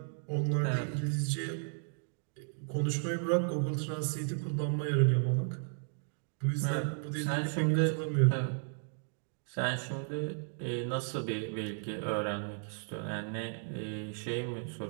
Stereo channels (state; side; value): silent; left; digital silence